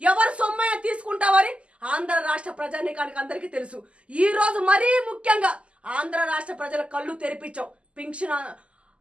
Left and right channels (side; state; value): left; late; 0.056 ms